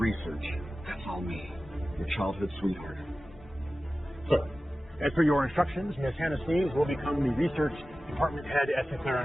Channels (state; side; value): normal; both; correlation 0.96